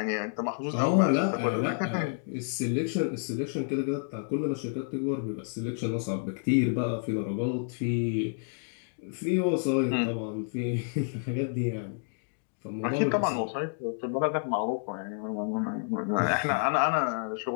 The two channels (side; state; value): right; silent; digital silence